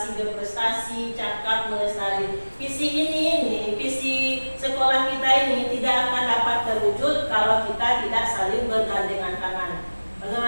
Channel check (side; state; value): both; inverted; correlation -1.00